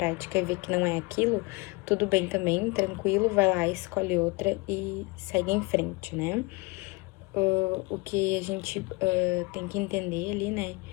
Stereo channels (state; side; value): quieter; right; 26.4 dB